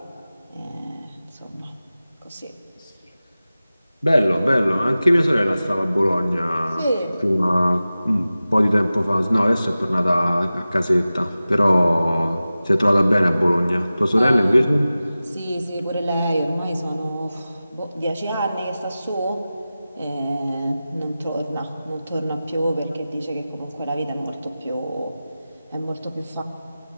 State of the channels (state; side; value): inverted; both; correlation -0.96